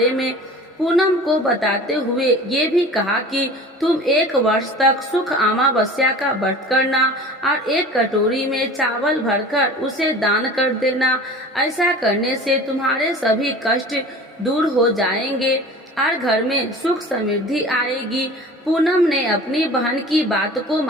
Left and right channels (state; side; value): normal; both; correlation 0.40